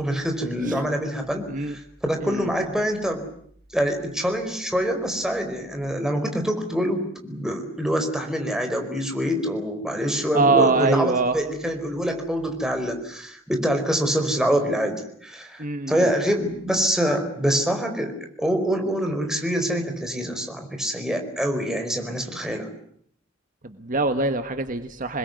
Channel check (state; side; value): normal; both; correlation 0.57